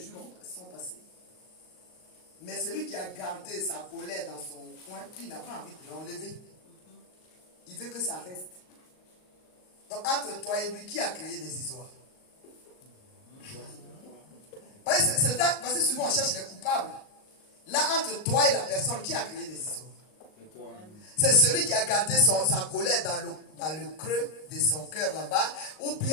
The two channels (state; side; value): late; right; 38 ms